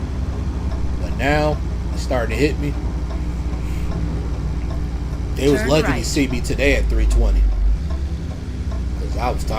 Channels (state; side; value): identical; both; correlation 1.00